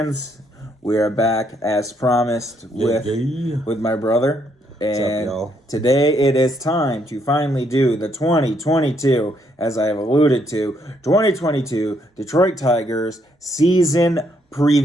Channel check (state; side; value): normal; both; correlation 0.72